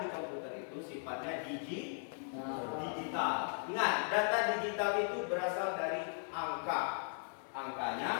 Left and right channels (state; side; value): silent; right; 53 dB below the other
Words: komputer itu sifatnya digital. Ingat, data digital itu berasal dari angka.